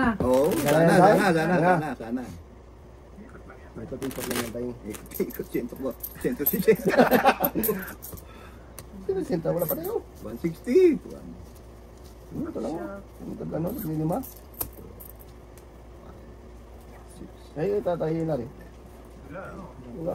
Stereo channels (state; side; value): identical; both; correlation 1.00